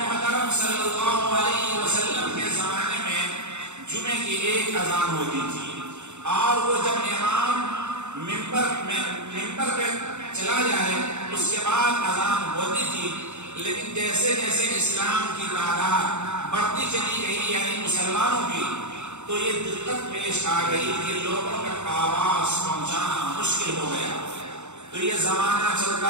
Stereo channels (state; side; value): late; left; 0.83 ms